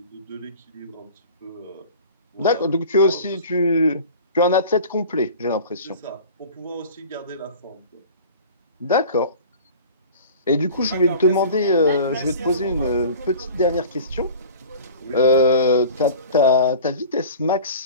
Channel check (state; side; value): inverted; both; correlation -0.41